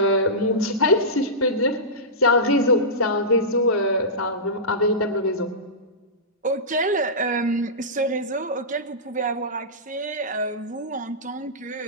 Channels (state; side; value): normal; both; correlation -0.17